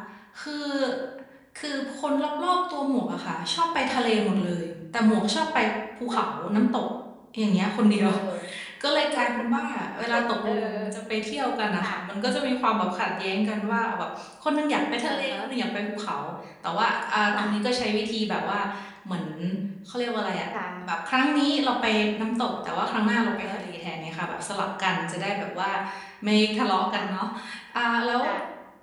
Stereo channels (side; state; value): both; identical; correlation 1.00